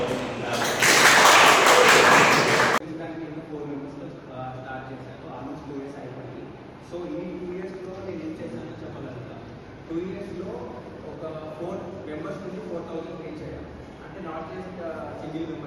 Start చేశాను ఆల్మోస్ట్ 2 years అయిపోయింది. సో ఈ 2 yearsలో నేను ఏం చేశానో చెప్పగలుగుతా. 2 yearsలో ఒక 4 members నుంచి 4,000 పే చేయడం అంటే నాట్ జస్ట్ సింగిల్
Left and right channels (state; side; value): identical; both; correlation 1.00